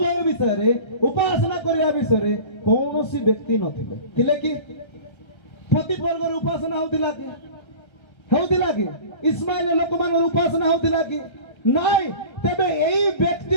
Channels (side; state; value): right; late; 1.3 ms